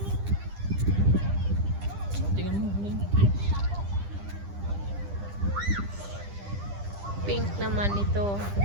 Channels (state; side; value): late; left; 10 ms